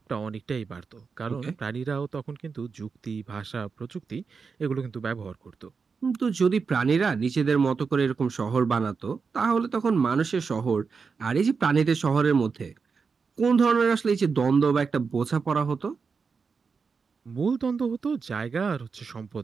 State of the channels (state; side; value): quieter; left; 5.2 dB